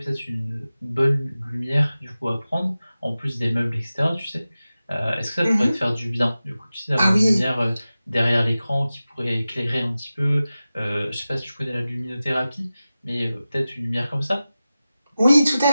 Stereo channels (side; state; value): both; inverted; correlation -0.95